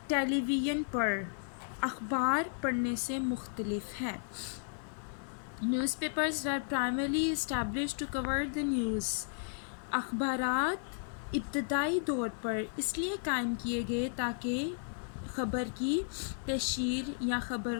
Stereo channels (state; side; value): silent; right; digital silence